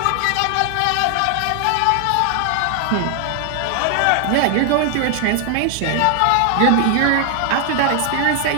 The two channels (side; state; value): both; different; correlation 0.00